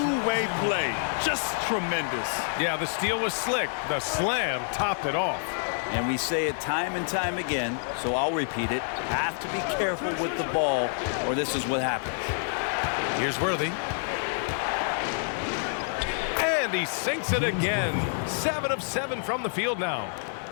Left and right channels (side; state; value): right; silent; digital silence